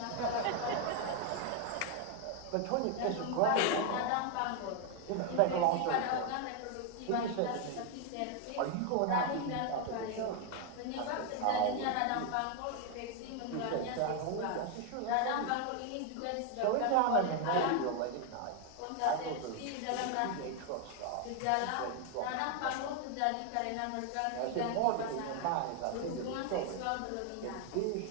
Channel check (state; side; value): different; both; correlation 0.01